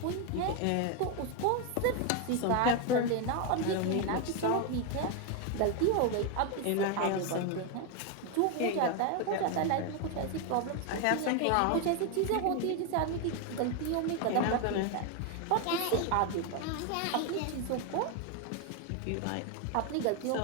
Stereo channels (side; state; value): both; different; correlation 0.01